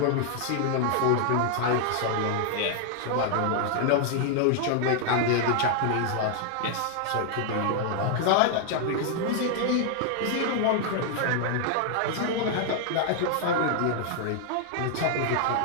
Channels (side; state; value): both; different; correlation 0.00